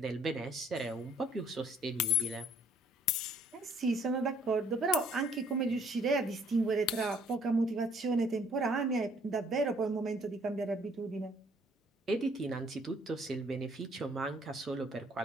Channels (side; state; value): both; normal; correlation 0.61